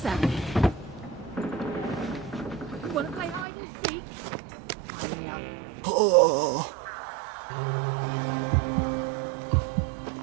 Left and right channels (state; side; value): drops out; left; at 3.5 s